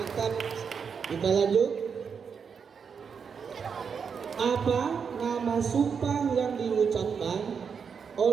Kita lanjut. Apa nama sumpah yang diucapkan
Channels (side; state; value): left; quieter; 6.3 dB